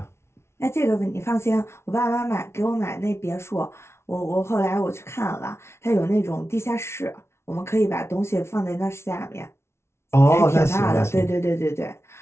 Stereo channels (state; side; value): late; right; 0.13 ms